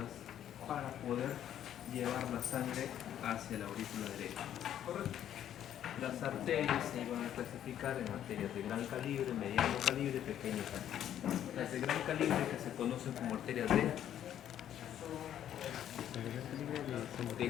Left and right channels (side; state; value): right; quieter; 10.7 dB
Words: para poder llevar la sangre hacia la aurícula derecha. ¿Correcto? Las arterias se iban a clasificar en arterias de gran calibre, mediano calibre, pequeño calibre. Las de gran calibre, que se conocen como arterias de